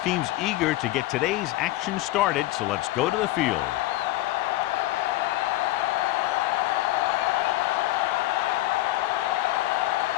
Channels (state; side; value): quieter; right; 16.8 dB